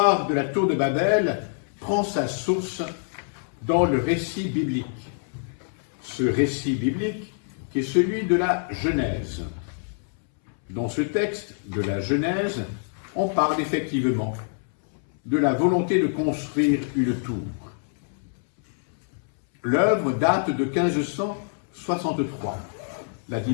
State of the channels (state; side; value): silent; right; 61 dB below the other